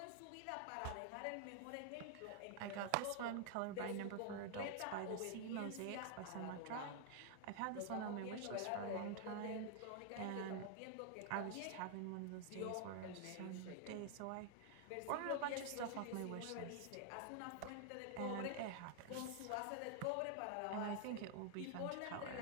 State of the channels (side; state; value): both; different; correlation 0.00